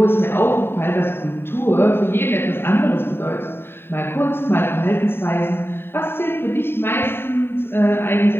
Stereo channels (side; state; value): right; late; 0.11 ms